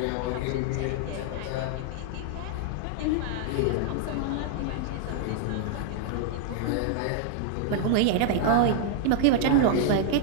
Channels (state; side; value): different; both; correlation 0.00